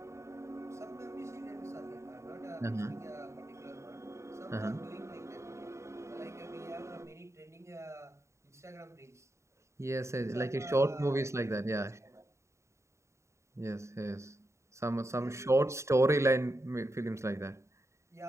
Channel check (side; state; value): left; late; 0.14 ms